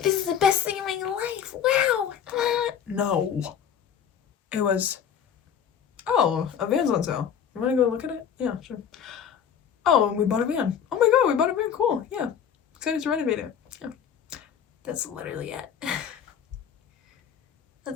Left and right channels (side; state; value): right; quieter; 8.2 dB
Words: this is the best thing in my life. Wow. No. It was, oh, a van's on sale. You want to go look at it? Yeah, sure. Oh, and we bought a van. Oh my god, we bought a van. Cool. Yeah. Excited to renovate it. Yeah. That's literally it.